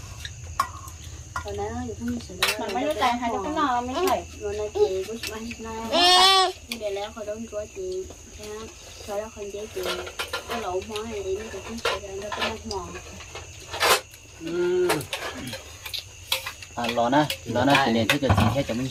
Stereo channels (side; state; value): both; identical; correlation 1.00